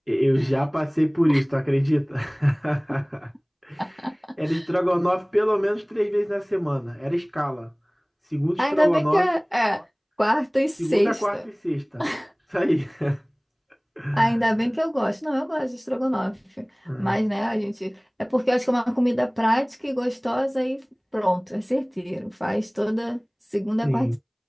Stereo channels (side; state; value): both; identical; correlation 1.00